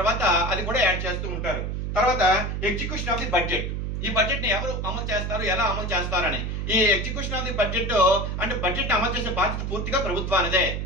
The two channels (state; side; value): noise; right; hum, 3 dB below the sound